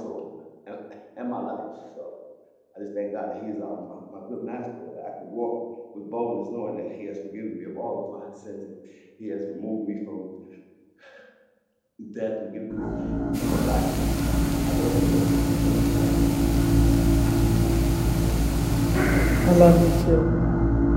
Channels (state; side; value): identical; both; correlation 1.00